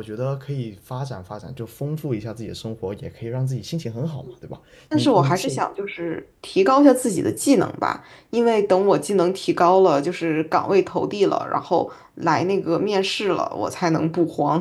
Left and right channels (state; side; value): identical; both; correlation 1.00